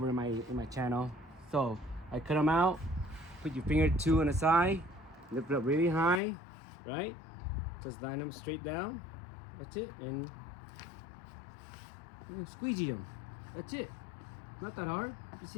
in my channel. So I cut them out. Put your finger 2 on the side. Lift it up really high, right? Just line them straight down. That's it, and squeegee them. That's it. Not that hard. You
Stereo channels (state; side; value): drops out; right; at 6.2 s